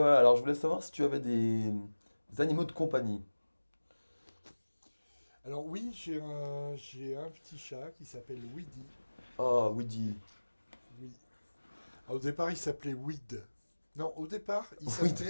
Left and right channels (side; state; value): both; inverted; correlation -1.00